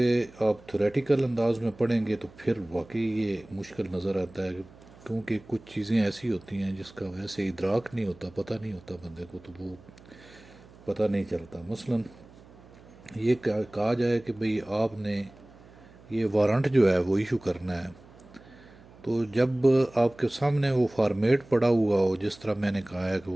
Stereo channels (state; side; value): noise; right; hum, 23 dB below the sound